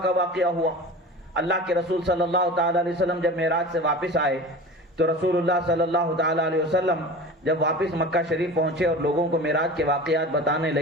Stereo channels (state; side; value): normal; both; correlation 0.35